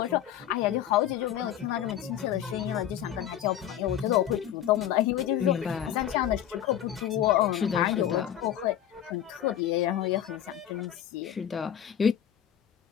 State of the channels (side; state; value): right; quieter; 10.8 dB